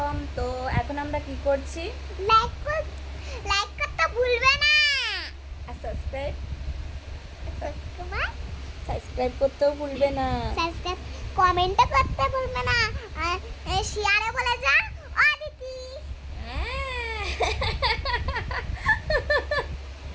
তো এখন আমরা কি করছি? লাইক করতে ভুলবে না আর সাবস্ক্রাইব করতেও ভুলবে না। সাবস্ক্রাইব কমেন্ট করতে ভুলবে না আর শেয়ারে বলে যা অদিতি।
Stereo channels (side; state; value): both; identical; correlation 1.00